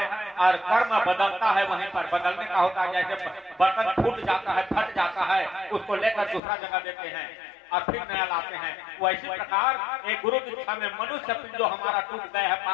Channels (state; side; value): drops out; right; at 6.4 s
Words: और कर्म बदलता है। वहीं पर बदलने का होता है, जैसे बर्तन फूट जाता है, फट जाता है, उसको लेकर दूसरा जगह देते हैं और फिर नया लाते हैं। वैसी प्रकार एक गुरु दीक्षा में मनुष्य जो हमारा टूट गए है